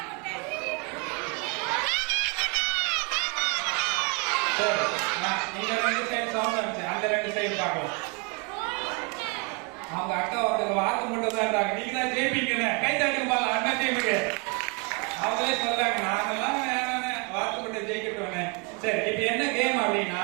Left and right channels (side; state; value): left; quieter; 32.2 dB